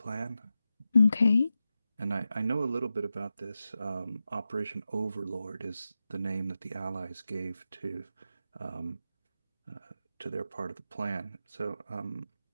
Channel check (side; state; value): both; inverted; correlation -0.91